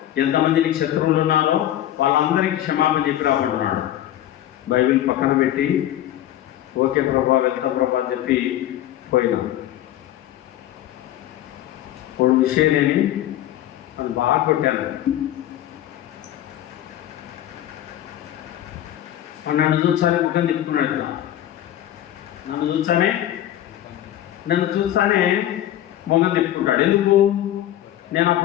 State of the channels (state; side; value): quieter; right; 12.6 dB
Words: ఎంతమంది నీకు శత్రువులు ఉన్నారో వాళ్ళందరికీ క్షమాపణ చెప్పి రాబడుతున్నాడు. బైబిల్ పక్కన పెట్టి ఓకే ప్రభా, వెళ్తాం ప్రభా అని చెప్పి పోయినాం. ఇప్పుడు విషయం లేని నన్ను బాగా కొట్టాను. నన్ను చూసానే ముఖం తిప్పుకున్నాడు. నన్ను చూసానే మొగం తిప్పుకుంటాడు. ఎందుకు? నేను